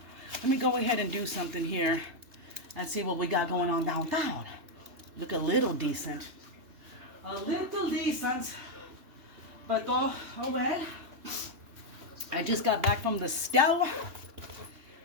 Let me go ahead and do something here and see what we got going on downtown. Look a little decent. A little decent. But oh well. I just got back from the store.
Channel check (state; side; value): late; left; 3.3 ms